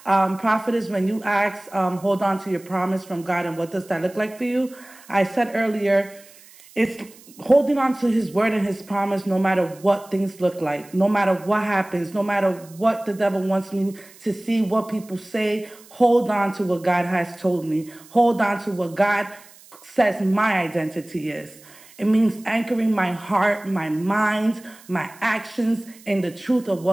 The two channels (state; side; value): noise; right; hiss, 23 dB below the sound